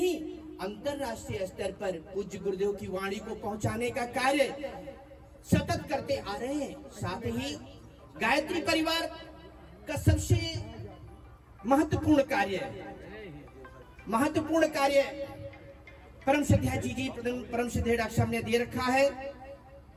अंतरराष्ट्रीय स्तर पर पूज्य गुरुदेव की वाणी को पहुंचाने का कार्य सतत करते आ रहे हैं। साथ ही गायत्री परिवार का सबसे महत्वपूर्ण कार्य परम श्रद्धा जी परम श्रद्धेय डॉक्टर साहब ने दे रखा है।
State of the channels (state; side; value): identical; both; correlation 1.00